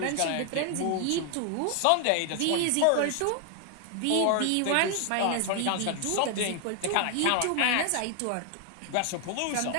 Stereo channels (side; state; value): both; different; correlation 0.00